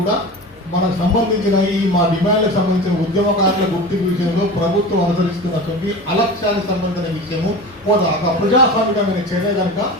కూడా మనకు సంబంధించిన ఈ మా డిమాండ్లకు సంబంధించిన ఉద్యమకారుల గుర్తింపు విషయంలో ప్రభుత్వం అనుసరిస్తున్నటువంటి అలక్ష్యానికి సంబంధించిన విషయము ఒక ప్రజాస్వామికమైన చర్య కనుక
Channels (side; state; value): both; normal; correlation 0.32